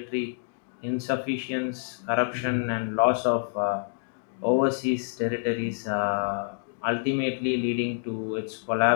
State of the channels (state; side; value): silent; right; digital silence